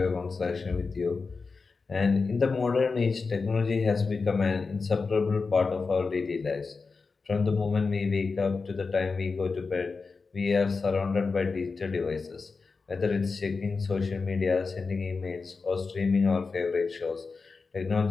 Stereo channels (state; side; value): quieter; right; 4.5 dB